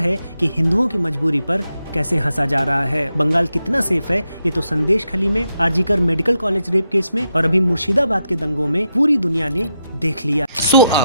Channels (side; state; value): both; inverted; correlation -0.84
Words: कि हिंदुओं की मजबूरी पर कैसे हंसा जा रहा है। बंगाल कितना सेफ है ये तो संदेश खली में, RG Kar medical college rape case में और अभी मुर्शिदाबाद के दंगों में पूरी दुनिया ने देख लिया। सो